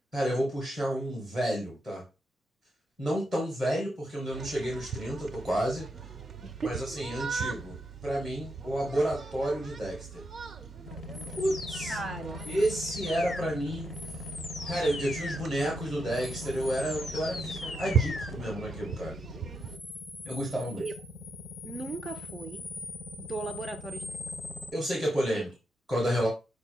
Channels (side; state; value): both; normal; correlation 0.83